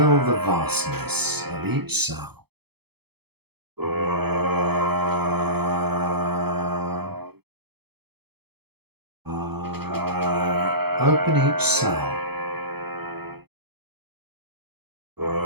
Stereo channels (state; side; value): late; left; 0.97 ms